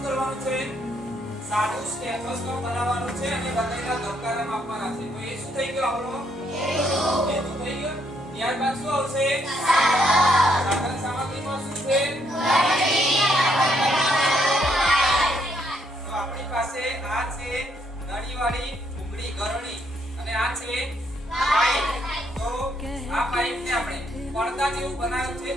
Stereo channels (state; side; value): normal; both; correlation 0.72